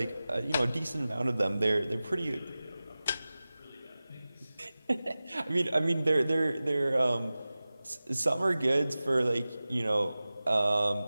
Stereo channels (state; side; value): inverted; both; correlation -0.97